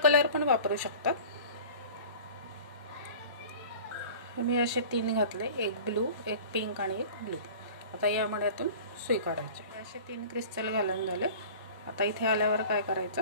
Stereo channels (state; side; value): inverted; both; correlation -0.41